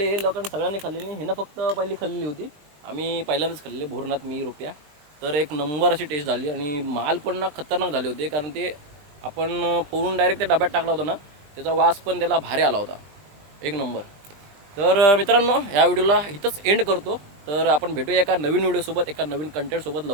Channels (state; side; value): late; left; 20 ms